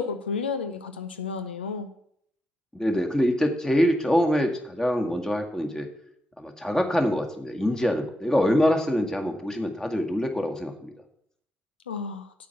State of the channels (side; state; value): both; normal; correlation 0.84